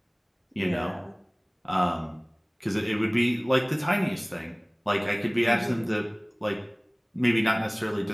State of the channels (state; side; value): identical; both; correlation 1.00